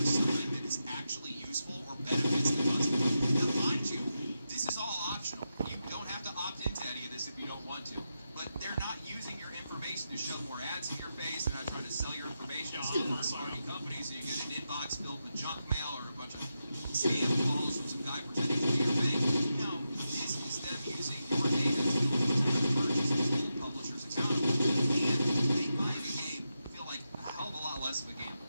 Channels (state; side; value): inverted; both; correlation -0.88